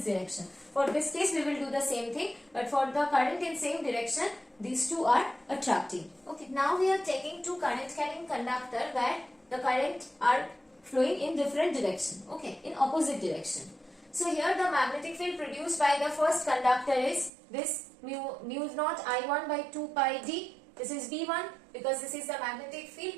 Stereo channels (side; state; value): left; drops out; at 17.3 s